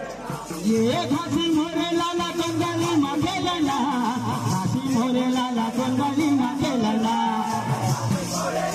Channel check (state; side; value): identical; both; correlation 1.00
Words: ये घासी मोरे लाला कोंडली मखना घासी मोरे लाला कोंडली मखना